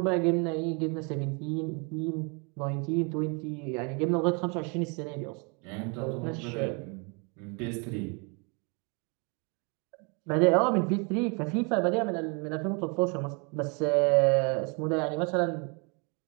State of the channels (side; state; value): left; quieter; 33.5 dB